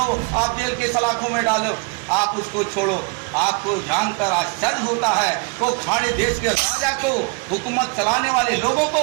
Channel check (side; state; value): left; quieter; 31.6 dB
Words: आप जेल के सलाखों में डालो, आप उसको छोड़ो। आपको जानकर आश्चर्य होता है वो खाड़ी देश के राजा को, हुकूमत चलाने वाले लोगों को